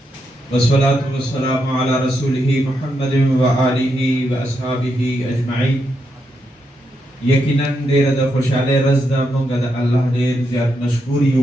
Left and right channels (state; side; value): normal; both; correlation 0.82